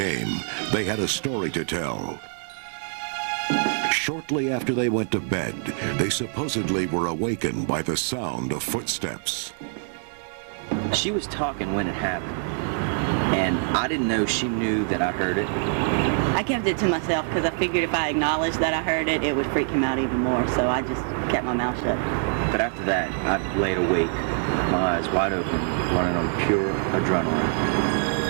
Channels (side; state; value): left; silent; 62 dB below the other